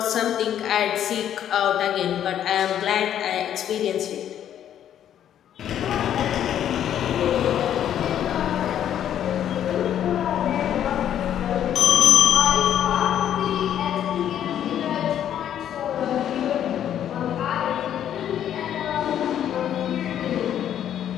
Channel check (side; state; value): right; quieter; 10.3 dB